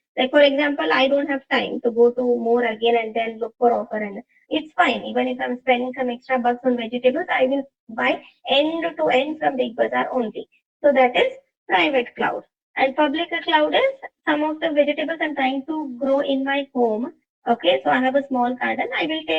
like for example, I don't have time to go to more again and then look for offer, and it's fine. Even if I'm spending some extra bucks on vegetables, I will buy end to end from Big Bazaar only. So that is private cloud. And public cloud is some of the vegetables I'm trying to grow in my home. Okay, so I have a small garden. I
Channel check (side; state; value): both; identical; correlation 1.00